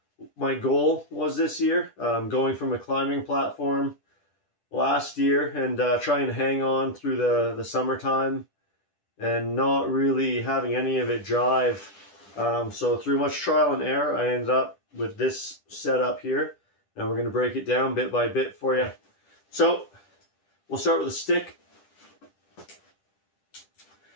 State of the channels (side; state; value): right; late; 10 ms